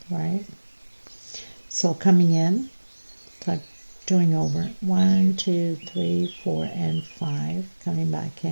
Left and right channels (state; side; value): inverted; both; correlation -1.00